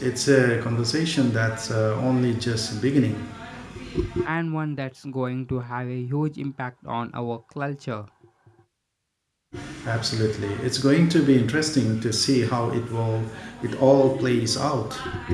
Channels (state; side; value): identical; both; correlation 1.00